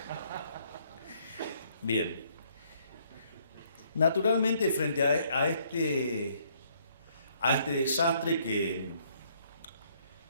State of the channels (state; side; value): inverted; both; correlation -0.67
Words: Bien. Naturalmente, frente a este desastre